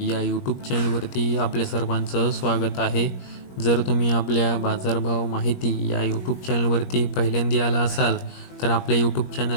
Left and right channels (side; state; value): right; late; 21 ms